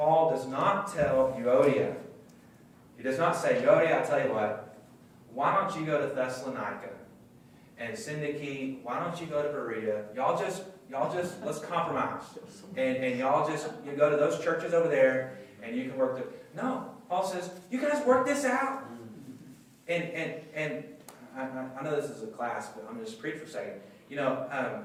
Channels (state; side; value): identical; both; correlation 1.00